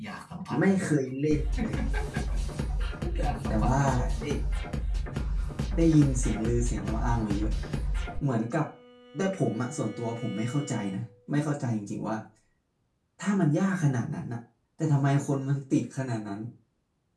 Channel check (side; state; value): both; identical; correlation 1.00